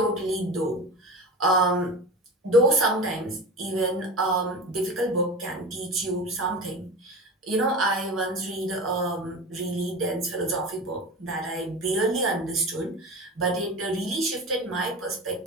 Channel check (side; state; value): both; normal; correlation 0.30